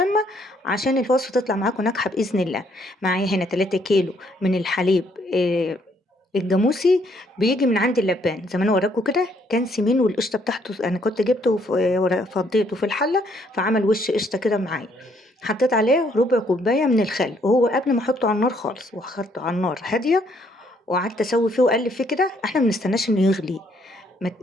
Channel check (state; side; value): normal; both; correlation 0.68